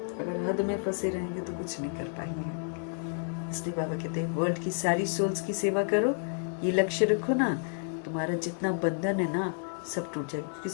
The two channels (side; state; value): right; silent; 57 dB below the other